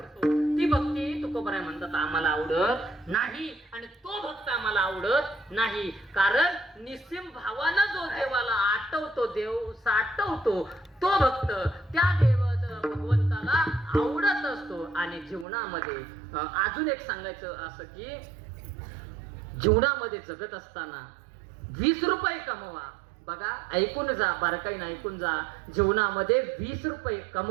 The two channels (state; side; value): drops out; left; at 15.5 s